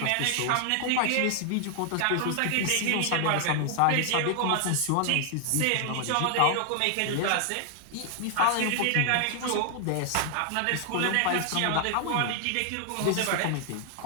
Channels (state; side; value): different; both; correlation 0.00